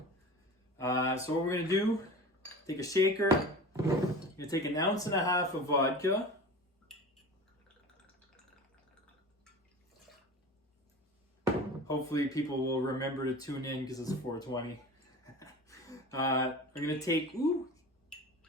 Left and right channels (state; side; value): normal; both; correlation 0.35